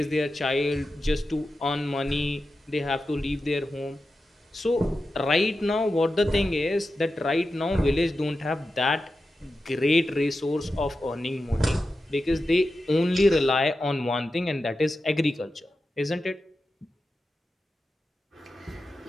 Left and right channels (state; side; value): normal; both; correlation 0.91